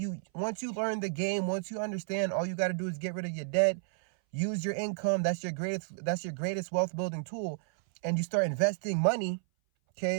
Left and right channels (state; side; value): silent; left; 57 dB below the other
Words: Once you learn the game, once you understand, all you got to do is get rid of your debt. Use your income. That's your greatest wealth building tool. And you start investing money,